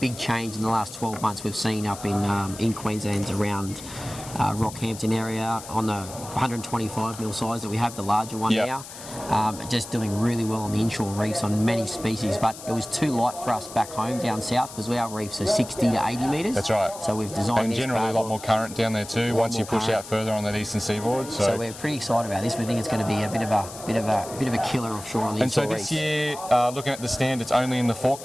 change in the last 12 months. We've seen up in Queensland around Rockhampton area on the 125 mil size that we have, the larger one now. Just doing really well on the inshore reefs on many species, but it was too light for us back home down south because our reefs are 60 to 80 metres. That's right. So we've designed and this generally a lot more current down there too once you push out further on that eastern seaboard. So we're pretty excited about this. We think it's going to be a bit of a killer offshore on the inshore reefs. And so this year, looking at the stand, it's only in the fork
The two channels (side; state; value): left; noise; hiss, 14 dB below the sound